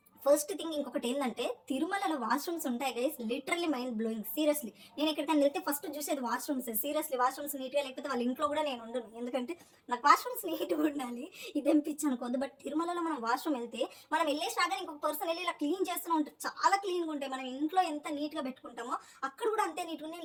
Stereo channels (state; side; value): identical; both; correlation 1.00